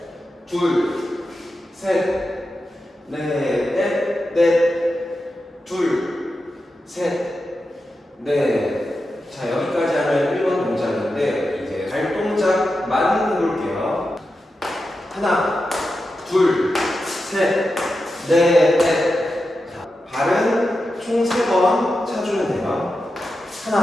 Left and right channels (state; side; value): normal; both; correlation 0.90